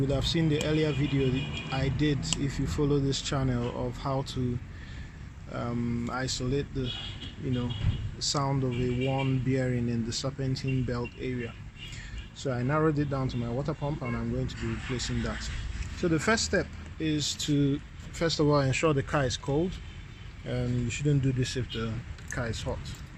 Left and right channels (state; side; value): identical; both; correlation 1.00